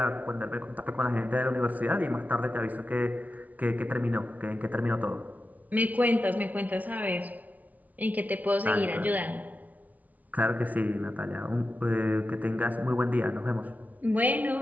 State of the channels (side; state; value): left; late; 0.074 ms